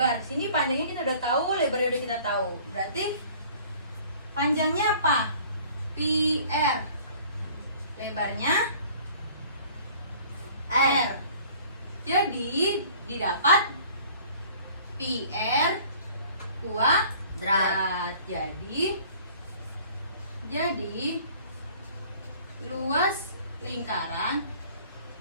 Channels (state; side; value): inverted; both; correlation -0.51